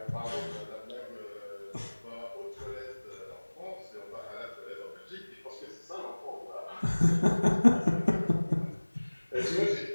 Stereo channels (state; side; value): inverted; both; correlation -1.00